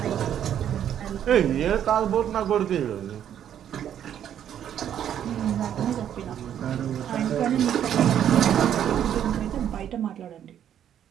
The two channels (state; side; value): quieter; left; 9.9 dB